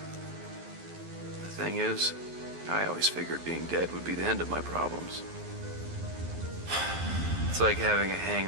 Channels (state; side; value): late; left; 12 ms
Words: The thing is, I always figured being dead would be the end of my problems. It's like having a